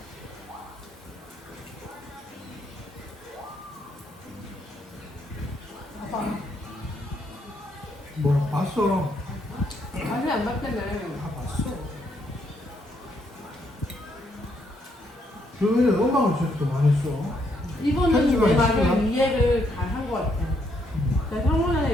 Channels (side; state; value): both; normal; correlation 0.74